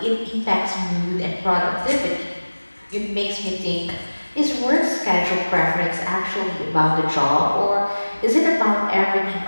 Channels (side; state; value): both; inverted; correlation -1.00